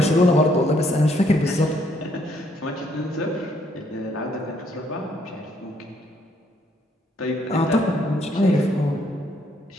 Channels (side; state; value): both; normal; correlation 0.69